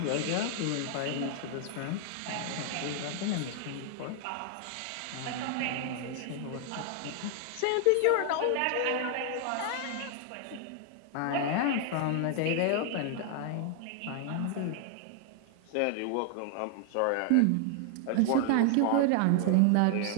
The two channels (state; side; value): different; both; correlation 0.00